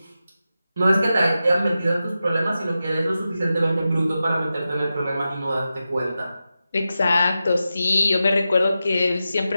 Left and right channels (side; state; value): both; inverted; correlation -0.91